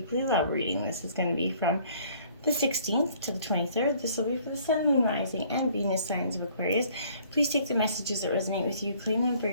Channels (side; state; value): both; inverted; correlation -0.58